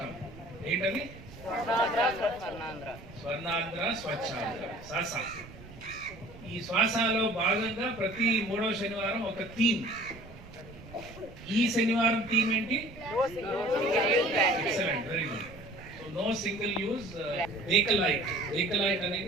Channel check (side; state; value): right; noise; rumble, 17 dB below the sound